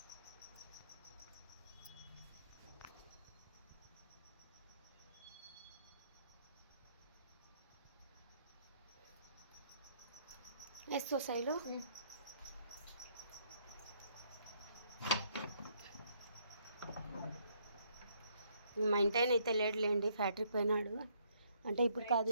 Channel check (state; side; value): inverted; both; correlation -0.69